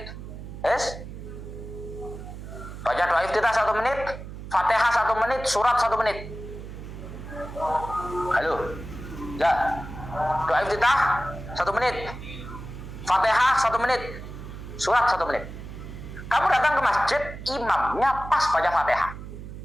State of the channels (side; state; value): right; noise; hum, 11 dB below the sound